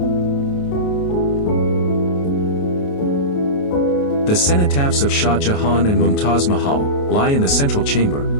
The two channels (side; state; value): right; late; 28 ms